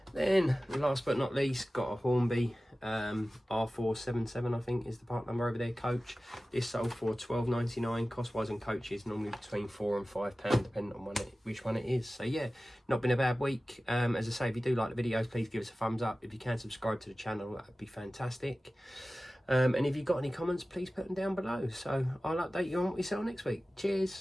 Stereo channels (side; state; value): both; normal; correlation 0.96